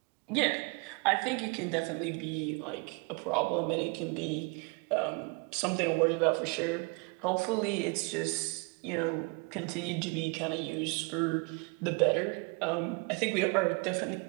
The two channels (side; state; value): left; quieter; 31.7 dB